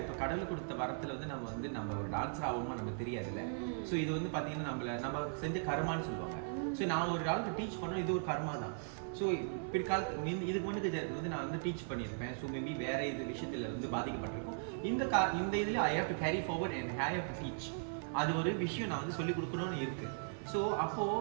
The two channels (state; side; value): silent; left; 52 dB below the other